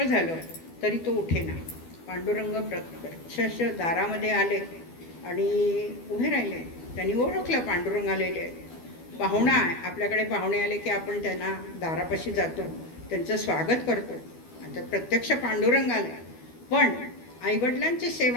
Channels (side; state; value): right; late; 12 ms